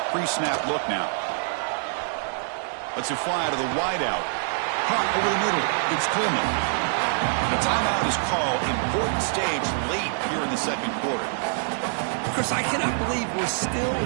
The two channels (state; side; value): silent; left; 61 dB below the other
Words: pre-snap look now. Let's it fly to the wideout. Caught over the middle. It's Coleman. The timeout is called. Important stage late here in the second quarter. Chris, I cannot believe we're still